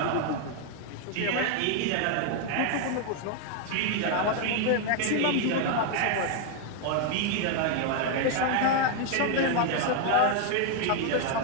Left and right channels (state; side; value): different; both; correlation 0.00